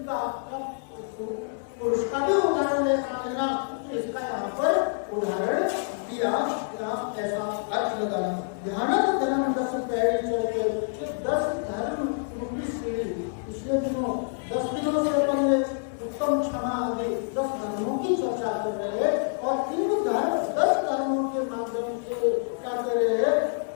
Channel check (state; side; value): silent; right; 60 dB below the other